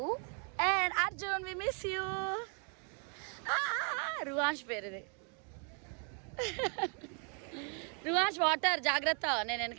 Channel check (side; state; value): left; quieter; 40.0 dB